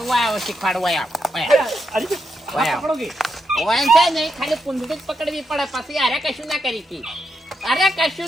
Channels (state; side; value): normal; both; correlation 0.83